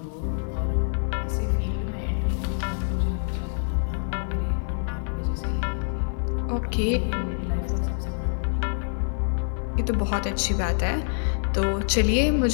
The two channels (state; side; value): silent; right; 55 dB below the other